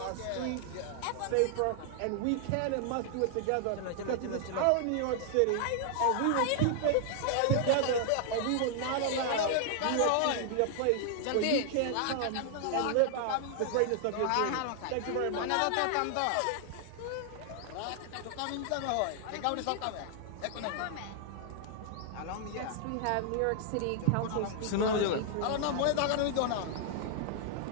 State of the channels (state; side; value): different; both; correlation 0.00